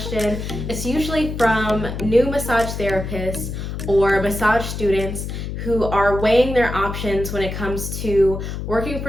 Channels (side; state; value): left; noise; hum, 6 dB below the sound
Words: it's usually from new massage therapists or massage students who are weighing their options when it comes to working